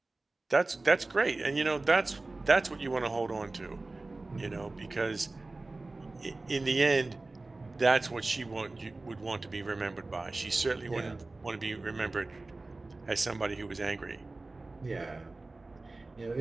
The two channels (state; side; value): quieter; left; 3.2 dB